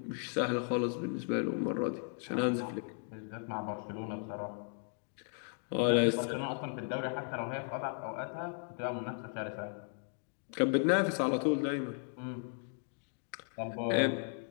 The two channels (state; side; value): silent; right; 54 dB below the other